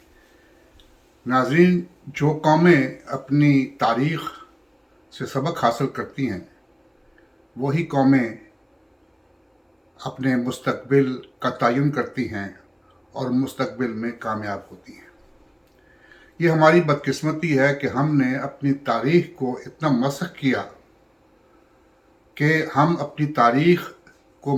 नाज़रीन, जो कौमें अपनी तारीख़ से सबक हासिल करती हैं, वही कौमें अपने मुस्तक़बिल का तयन करती हैं और मुस्तक़बिल में कामयाब होती हैं। ये हमारी बदकिस्मती है कि हमने अपनी तारीख़ को इतना मसख़ किया कि हम अपनी तारीख़ को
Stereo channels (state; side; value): identical; both; correlation 1.00